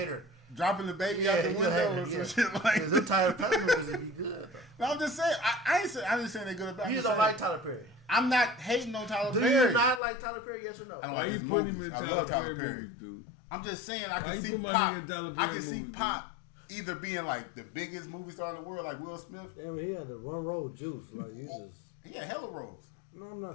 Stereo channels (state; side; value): drops out; right; at 10.0 s